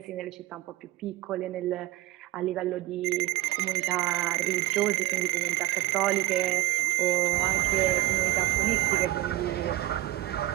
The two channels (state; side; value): quieter; left; 17.0 dB